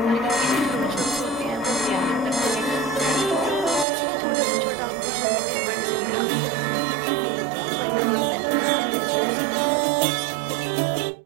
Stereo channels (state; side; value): drops out; left; at 3.9 s